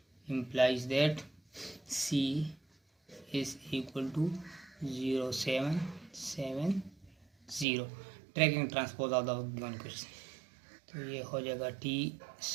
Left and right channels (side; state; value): left; drops out; at 7.7 s